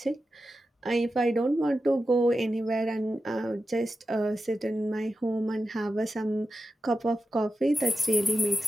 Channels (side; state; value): both; normal; correlation 0.91